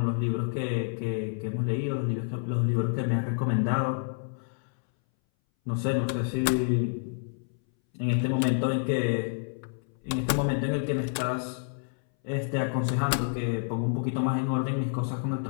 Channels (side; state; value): right; silent; 59 dB below the other